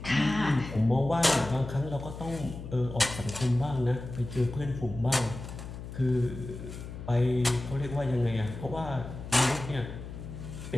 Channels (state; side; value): noise; left; hum, 10 dB below the sound